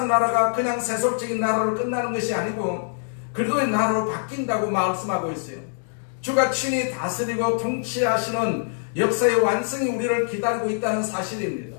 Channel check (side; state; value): right; silent; digital silence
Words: 나라가 그냥 세속적인 나라로 끝나는 것이 아니고 그리스도의 나라로 바뀐다고 말씀하고 있어요. 주가 친히 다스리고 통치하시는 역사의 완성이 우리를 기다리고 있다는 사실입니다.